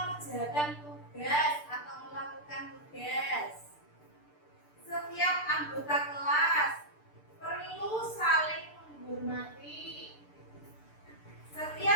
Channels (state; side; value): late; right; 6.8 ms